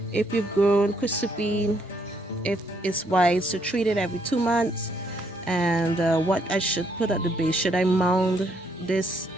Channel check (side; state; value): both; normal; correlation 0.71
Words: if you've grown Chrysophene, if it's wise to treat it every 2 months, and what I should put at the base. Should I mound this